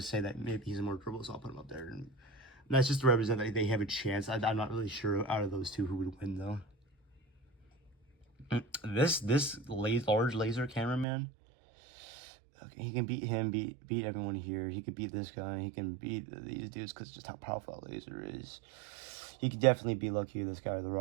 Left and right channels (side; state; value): left; drops out; at 11.1 s